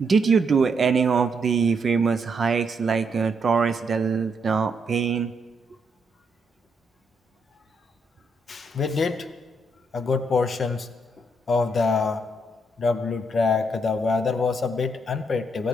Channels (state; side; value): normal; both; correlation 0.76